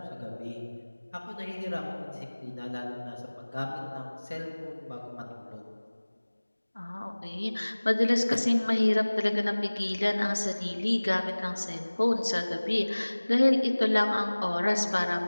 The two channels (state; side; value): inverted; both; correlation -1.00